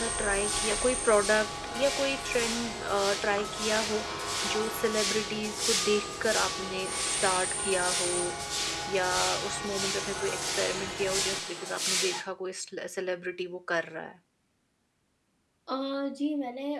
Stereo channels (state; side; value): identical; both; correlation 1.00